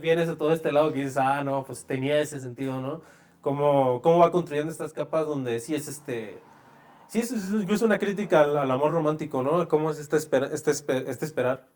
a todo este lado que dices, ah, no, pues tenía ese sentido, ¿no? Cómo va construyendo estas capas donde sí es Sí, es incluso una crítica al amor romántico, ¿no? Cómo es este esperar.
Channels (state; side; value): identical; both; correlation 1.00